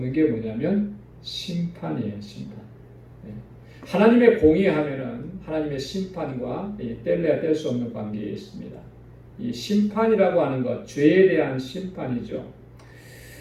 게 뭐냐면 심판이에요. 심판. 하나님의 공의하면은 하나님의 심판과 뗄래야 뗄 수 없는 관계에 있습니다. 이 심판이라고 하는 것, 죄에 대한 심판이죠.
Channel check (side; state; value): both; identical; correlation 1.00